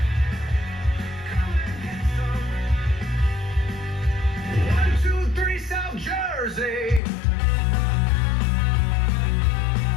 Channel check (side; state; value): right; drops out; at 7.0 s